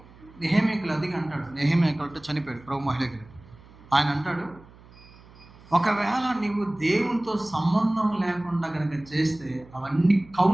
నెహెమ్యాకు అదిగా అంటాడు. నెహెమ్యాకు అంటే చనిపోయాడు, ప్రభు మహిళకి. ఆయన అంటాడు, ఒకవేళ నీవు దేవునితో సంబంధం లేకుండా కనుక చేస్తే అవన్నీ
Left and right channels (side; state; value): right; noise; hum, 23 dB below the sound